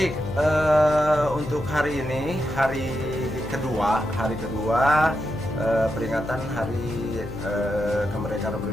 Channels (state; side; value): noise; left; hum, 9 dB below the sound